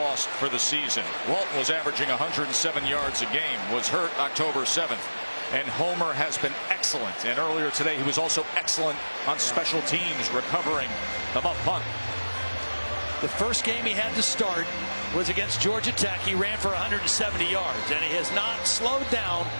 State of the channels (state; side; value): inverted; both; correlation -1.00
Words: for the season. Walton was averaging 107 yards a game, was hurt October 7th. And Homer has been excellent. And earlier today, he was also excellent on special teams, recovering the muff punt. The first game he had to start was against Georgia Tech. He ran for 170 yards, and he has not slowed down